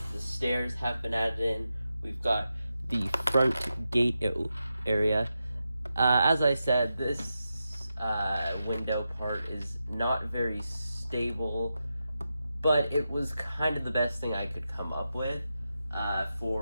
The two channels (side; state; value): both; inverted; correlation -0.89